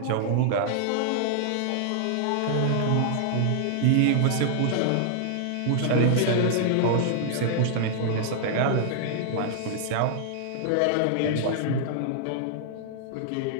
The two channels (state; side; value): different; both; correlation -0.01